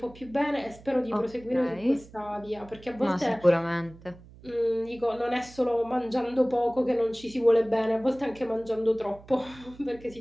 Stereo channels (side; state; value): right; noise; hum, 21 dB below the sound